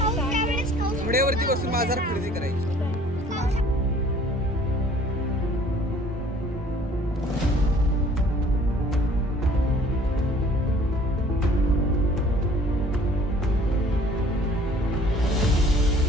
घोड्यावरती बसून बाजार खरेदी करायची.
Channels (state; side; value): normal; both; correlation 0.54